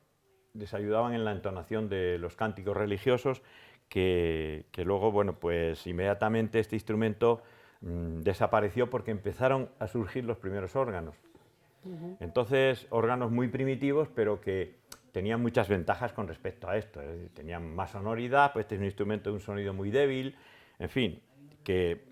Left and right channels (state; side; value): identical; both; correlation 1.00